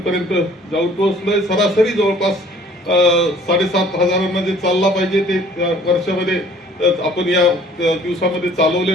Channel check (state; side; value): normal; both; correlation 0.54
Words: जाऊन पोहोचलोय. सरासरी जवळपास 7,500 जे चालला पाहिजे ते वर्षामध्ये आपण या दिवसामध्ये